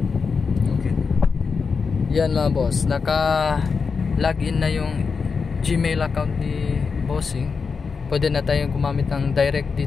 Okay. Yan mga boss, naka-login na yung Gmail account ni Bossing. Pwede na tayong gumamit ng direct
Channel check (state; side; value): quieter; right; 5.2 dB